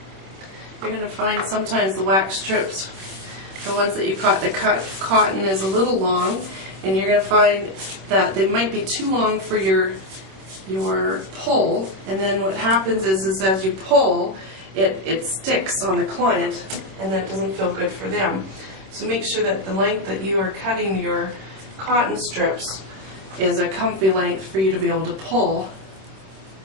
You're going to find sometimes the wax strips, the ones that you cut, the cotton is a little long, and you're going to find that they might be too long for your pull, and then what happens is as you pull, it sticks on the client, and that doesn't feel good for them. So make sure that the length that you are cutting your cotton strips is a comfy length for you to be able to pull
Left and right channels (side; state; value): left; late; 26 ms